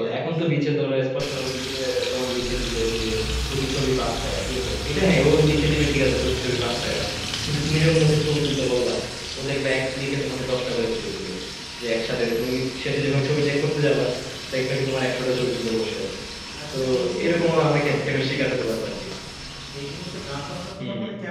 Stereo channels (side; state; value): both; identical; correlation 1.00